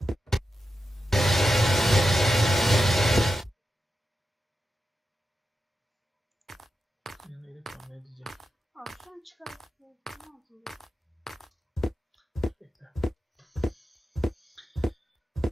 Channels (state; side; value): normal; both; correlation 0.89